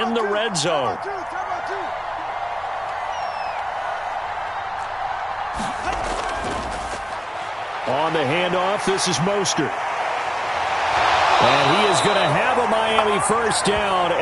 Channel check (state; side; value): identical; both; correlation 1.00